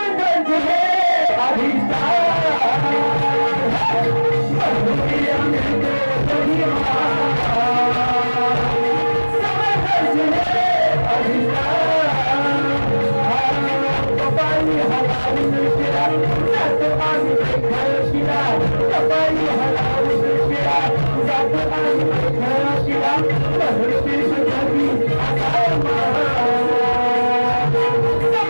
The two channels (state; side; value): inverted; both; correlation -1.00